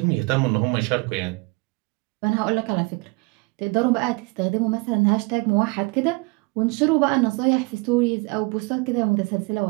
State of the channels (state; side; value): quieter; left; 27.9 dB